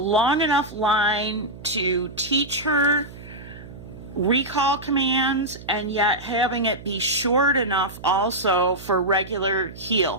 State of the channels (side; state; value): right; noise; hum, 16 dB below the sound